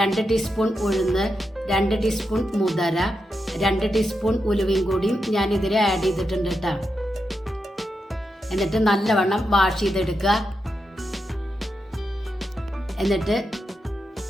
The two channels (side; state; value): both; normal; correlation 0.86